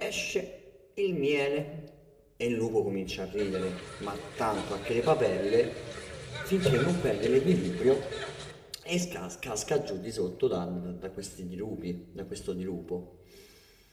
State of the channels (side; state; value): both; identical; correlation 1.00